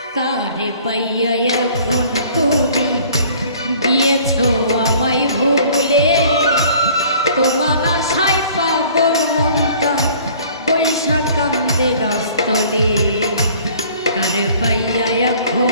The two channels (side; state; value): both; inverted; correlation -0.52